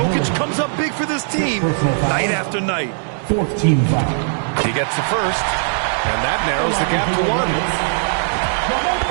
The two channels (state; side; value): silent; left; 67 dB below the other